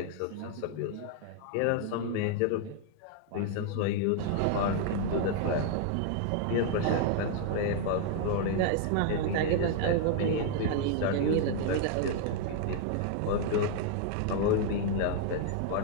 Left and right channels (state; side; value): different; both; correlation 0.00